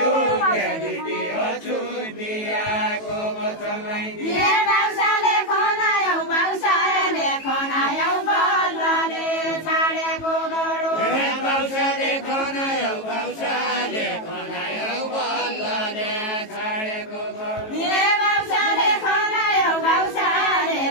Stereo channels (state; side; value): late; right; 18 ms